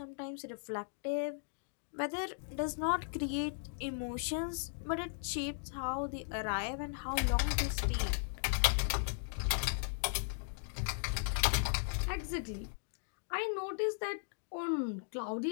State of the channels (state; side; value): silent; right; digital silence